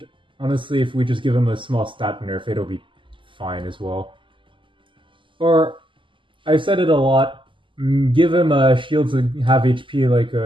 honestly, if we just give him a small stat nerf, it'll be fine as well. Or, I've said it a lot, give him shields that have HP like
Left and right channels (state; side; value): late; left; 0.25 ms